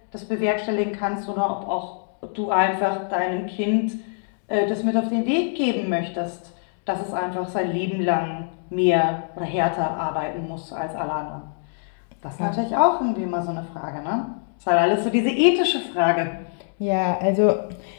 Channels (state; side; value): silent; right; digital silence